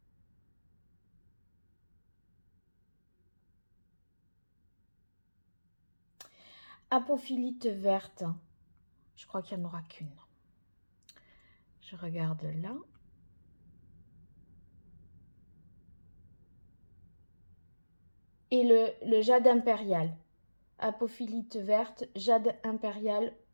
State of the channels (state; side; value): inverted; both; correlation -1.00